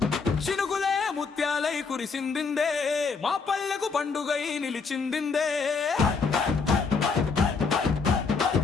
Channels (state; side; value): quieter; right; 4.9 dB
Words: చినుకులే ముత్యాలై కురిసిందిందే, మా పల్లెకు పండుగై నిలిచిందిందే.